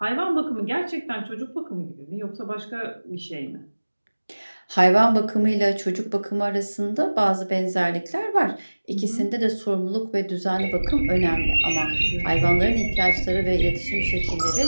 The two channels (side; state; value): both; inverted; correlation -1.00